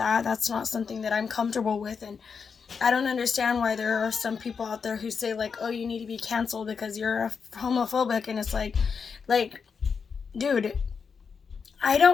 That's not something that I'm comfortable with, and I don't understand why there are some people out there who say like, oh, you need to be canceled because you're homophobic, and it's like, dude, I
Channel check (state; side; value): quieter; right; 5.9 dB